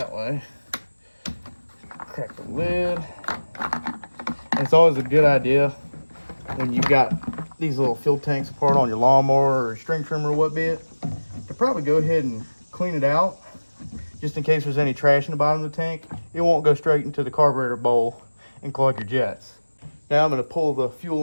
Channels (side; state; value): both; inverted; correlation -1.00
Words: way, crack the lid. And it's always a good idea when you got these little fuel tanks apart on your lawnmower or string trimmer or what be it, to probably go ahead and clean it out just in case there's any trash in the bottom of the tank. It won't go straight into the carburetor bowl and clog your jets. Now I'm going to pull the fuel